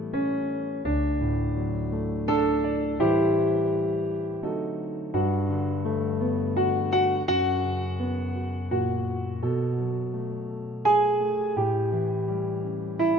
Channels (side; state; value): both; normal; correlation 0.61